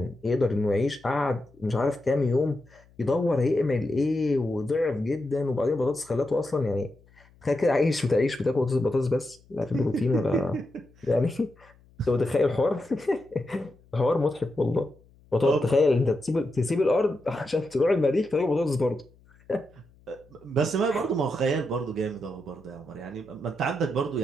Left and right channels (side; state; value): left; noise; hum, 29 dB below the sound